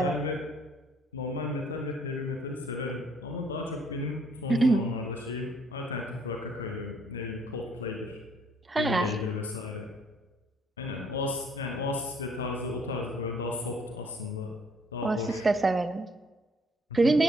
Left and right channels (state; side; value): normal; both; correlation 0.63